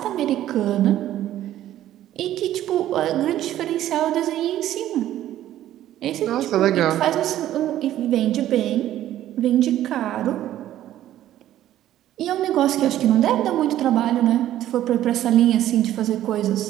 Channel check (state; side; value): quieter; left; 12.8 dB